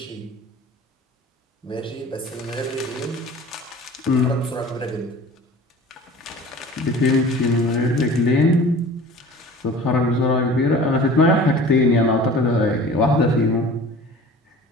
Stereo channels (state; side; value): normal; both; correlation 0.43